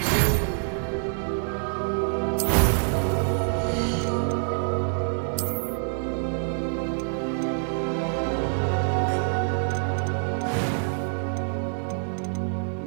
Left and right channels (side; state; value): left; silent; digital silence